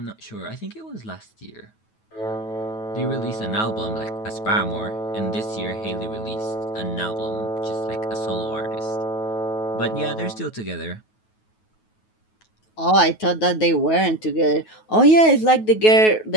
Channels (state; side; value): late; right; 9.3 ms